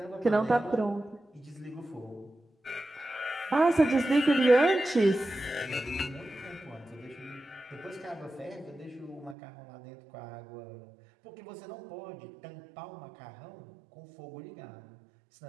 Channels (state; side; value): drops out; left; at 9.3 s